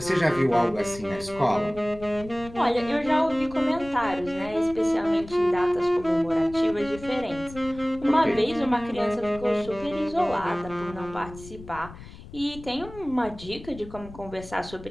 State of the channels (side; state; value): left; noise; rumble, 16 dB below the sound